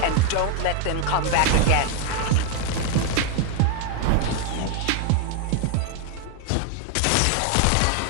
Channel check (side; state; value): both; different; correlation 0.01